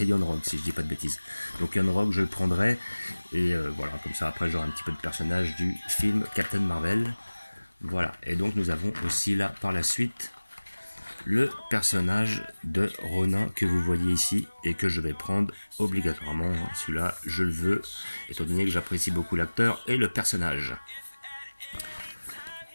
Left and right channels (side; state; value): both; inverted; correlation -1.00